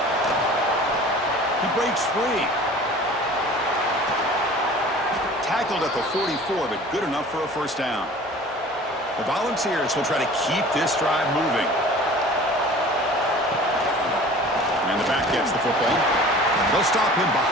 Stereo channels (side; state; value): both; normal; correlation 0.44